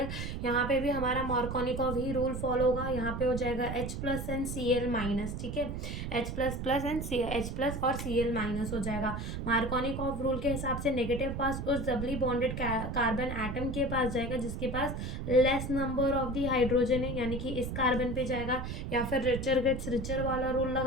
यहाँ पे भी हमारा मार्कोनिकॉव ही रूल फॉलो होगा। यहाँ पे हो जाएगा H plus and Cl minus. ठीक है, H plus plus and H plus और Cl माइनस हो जाएगा। मार्कोनिकॉव रूल के हिसाब से नेगेटिव पास उस डबली बॉन्डेड कार्बन एटम के पास जाएगा जिसके पास less number of the hydrogen है, यानी कि इस कार्बन पे जाएगा। या फिर रिचर गेट्स रिचर वाला रूल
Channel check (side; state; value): right; noise; rumble, 5 dB below the sound